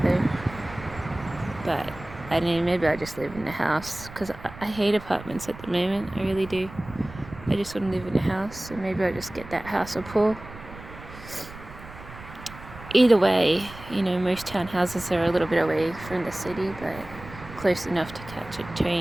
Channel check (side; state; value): right; noise; rumble, 16 dB below the sound